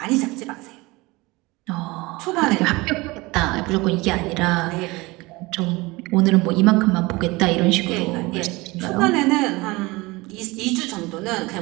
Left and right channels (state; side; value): quieter; left; 22.7 dB